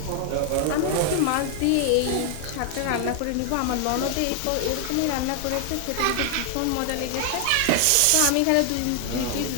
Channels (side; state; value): both; different; correlation 0.00